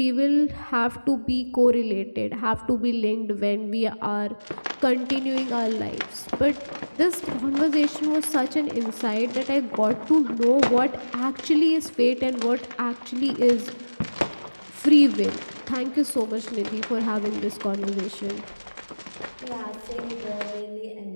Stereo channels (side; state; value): both; inverted; correlation -1.00